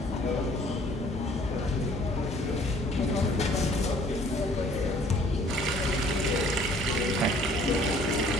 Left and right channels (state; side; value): normal; both; correlation 0.56